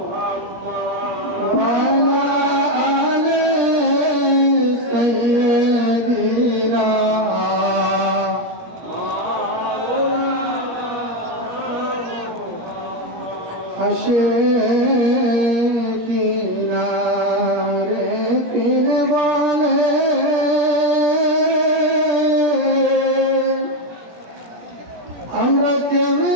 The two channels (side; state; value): left; late; 17 ms